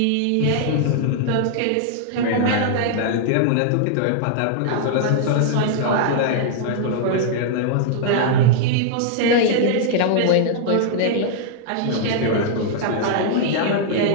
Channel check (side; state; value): both; different; correlation -0.01